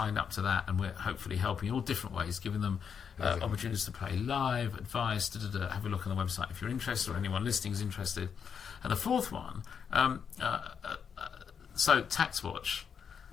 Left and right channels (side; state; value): right; quieter; 7.0 dB